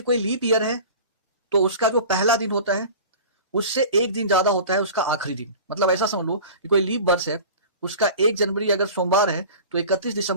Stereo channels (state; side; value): inverted; both; correlation -0.38